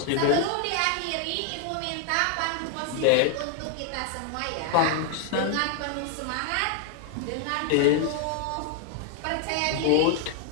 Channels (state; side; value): different; both; correlation 0.00